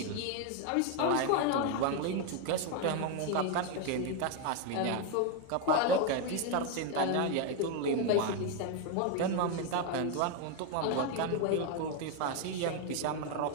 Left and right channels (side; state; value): both; different; correlation 0.01